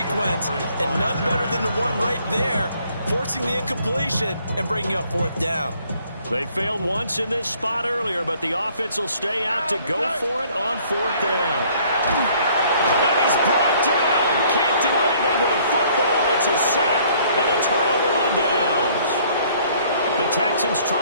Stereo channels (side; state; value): both; inverted; correlation -0.60